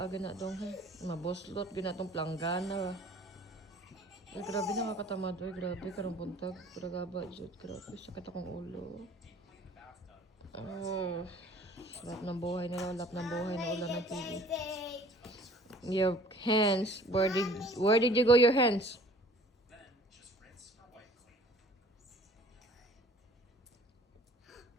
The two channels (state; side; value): normal; both; correlation 0.52